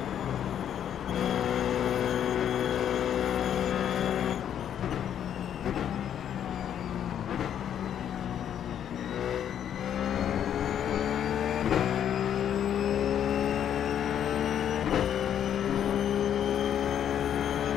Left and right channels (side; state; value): right; quieter; 9.6 dB